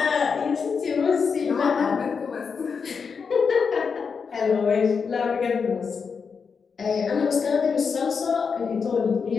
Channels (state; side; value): quieter; right; 5.7 dB